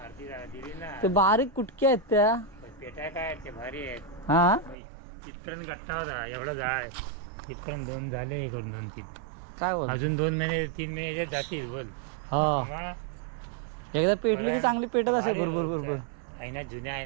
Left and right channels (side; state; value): left; drops out; at 4.8 s